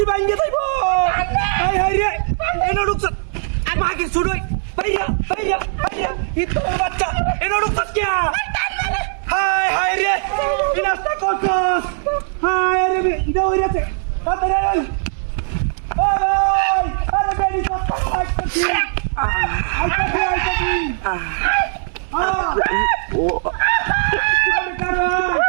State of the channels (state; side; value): silent; left; 65 dB below the other